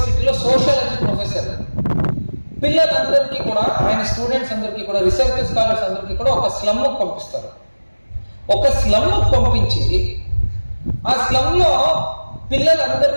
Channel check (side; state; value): both; inverted; correlation -1.00